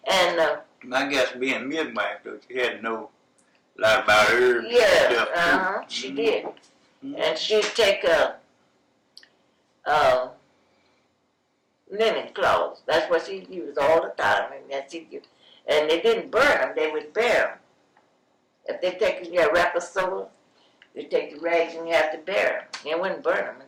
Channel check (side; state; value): both; identical; correlation 1.00